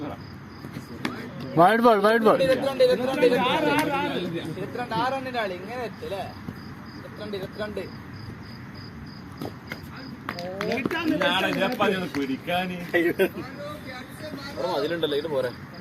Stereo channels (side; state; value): both; identical; correlation 1.00